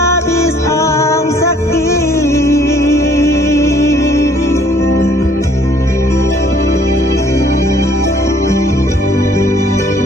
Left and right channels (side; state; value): both; normal; correlation 0.60